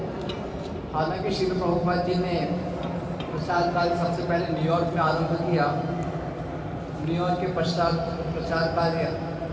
हालांकि श्रील प्रभुपाद जी ने प्रचार कार्य सबसे पहले न्यूयॉर्क में आरंभ किया, न्यूयॉर्क के पश्चात प्रचार कार्य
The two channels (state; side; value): identical; both; correlation 1.00